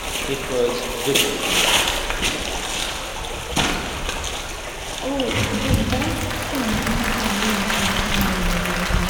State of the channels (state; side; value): identical; both; correlation 1.00